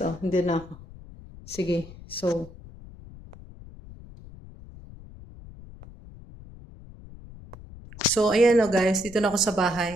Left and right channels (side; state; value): left; noise; rumble, 18 dB below the sound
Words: Oh, hindi na ako. Sige. So, ayan o guys. Dito na ako sa